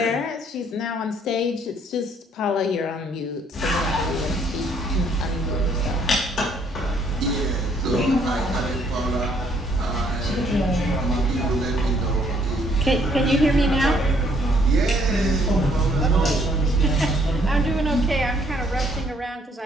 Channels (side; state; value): both; normal; correlation 0.65